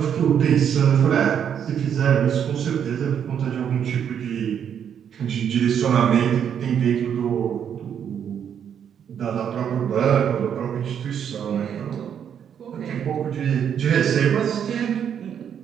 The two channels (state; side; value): quieter; left; 8.4 dB